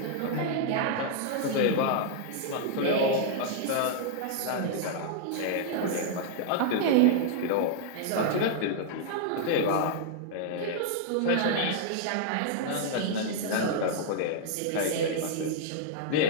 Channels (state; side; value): different; both; correlation -0.01